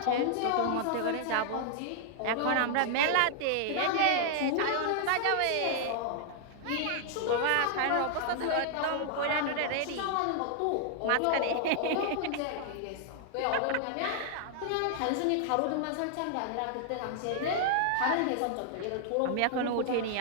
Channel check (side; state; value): both; different; correlation 0.00